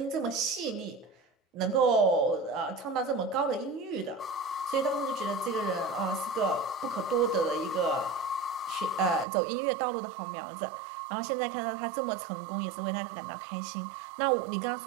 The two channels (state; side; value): drops out; left; at 9.2 s